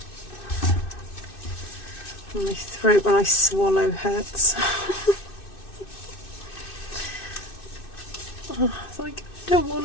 throat when I swallow hurts. Oh, it's like, I don't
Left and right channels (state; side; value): late; right; 2.6 ms